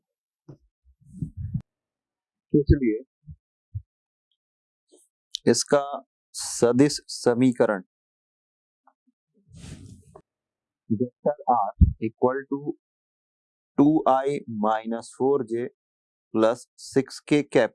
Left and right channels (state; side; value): identical; both; correlation 1.00